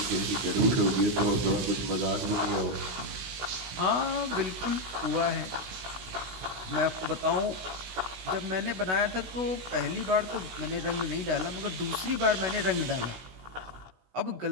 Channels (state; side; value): late; left; 16 ms